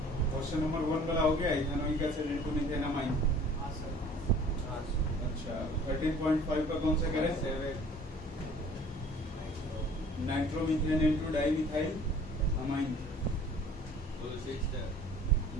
क्वेश्चन नंबर 1 वाला हो गया, इथेनॉइक एसिड इनटू मिथेनामाइन। अच्छा 13.5 का कौन सा करें? Nitromethane into dimethyl amine. 5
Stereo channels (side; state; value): both; normal; correlation 0.50